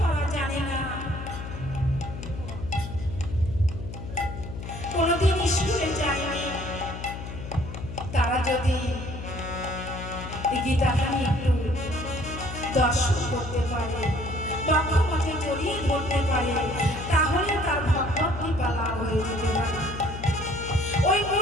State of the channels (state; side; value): noise; left; hum, 9 dB below the sound